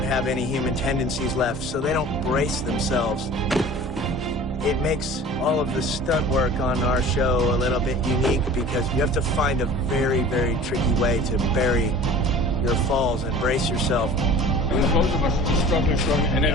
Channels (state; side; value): normal; both; correlation 0.42